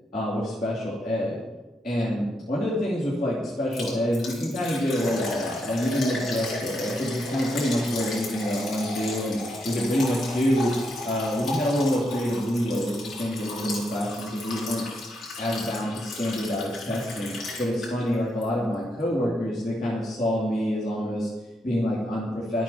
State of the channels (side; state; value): both; normal; correlation 0.80